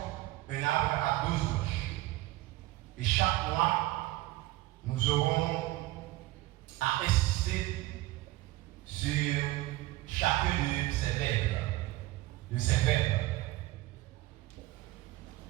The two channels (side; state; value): left; quieter; 17.9 dB